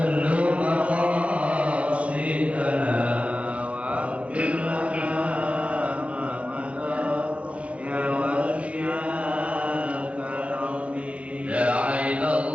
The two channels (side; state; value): left; late; 0.063 ms